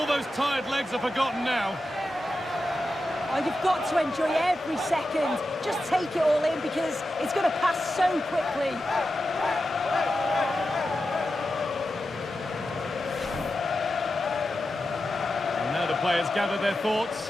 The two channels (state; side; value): normal; both; correlation 0.91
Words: those tired legs are forgotten now. Oh, you've got to enjoy every second. Just take it all in because it's going to pass so quickly. And now the players gather their thoughts.